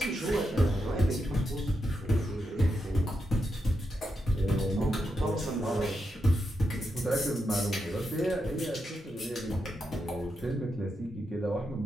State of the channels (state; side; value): normal; both; correlation 0.85